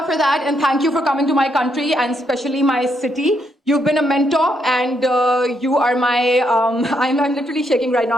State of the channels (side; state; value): both; normal; correlation 0.77